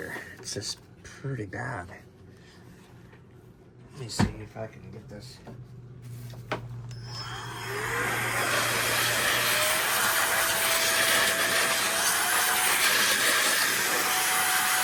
It's just pretty bad. Let me see if I can get this.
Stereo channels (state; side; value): identical; both; correlation 1.00